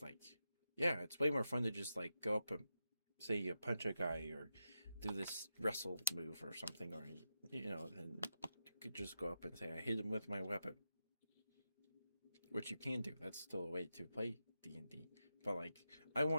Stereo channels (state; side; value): inverted; both; correlation -0.88